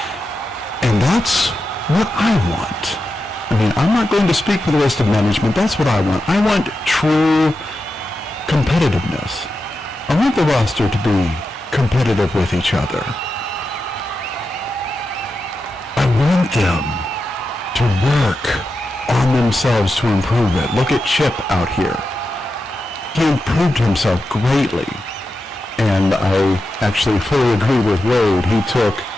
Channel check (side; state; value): both; normal; correlation 0.89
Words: And that's what I want. I mean, I'm not going to speak for the rest of management. That's what I want. I want true competitiveness. I want the roster to be competitive with each other. I want them to work on themselves to improve it. Look at Chip out here. He improved himself greatly. And I actually fully agree with Wade. He took